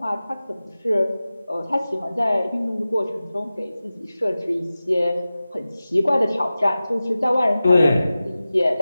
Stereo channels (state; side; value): inverted; both; correlation -0.96